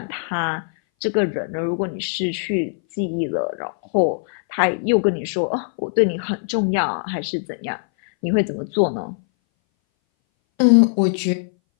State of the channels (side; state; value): right; silent; 61 dB below the other